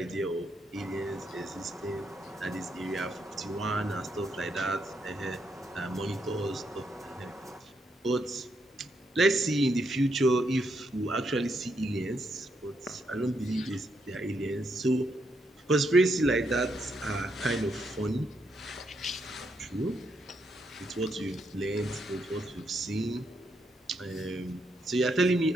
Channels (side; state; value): both; normal; correlation 0.78